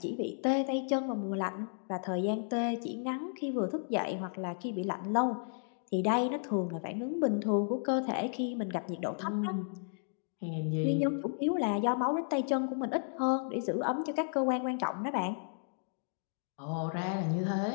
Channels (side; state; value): right; silent; digital silence